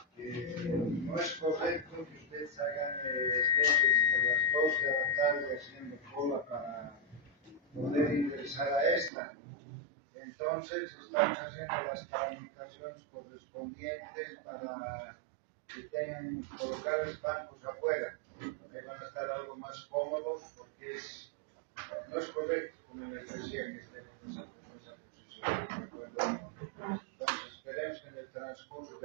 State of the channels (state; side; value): drops out; left; at 9.1 s